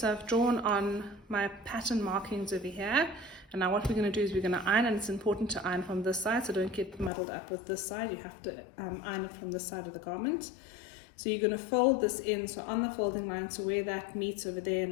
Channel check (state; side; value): drops out; right; at 7.1 s